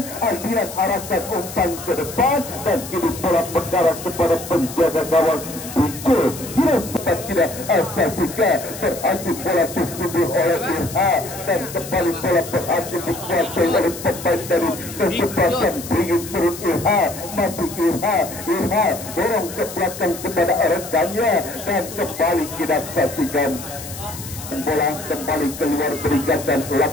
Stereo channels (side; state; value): left; noise; hiss, 12 dB below the sound